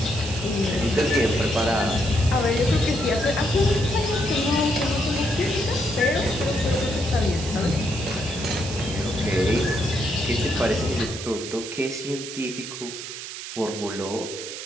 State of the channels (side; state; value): right; noise; hiss, 9 dB below the sound